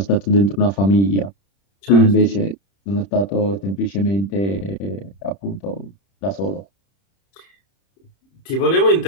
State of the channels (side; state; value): right; late; 30 ms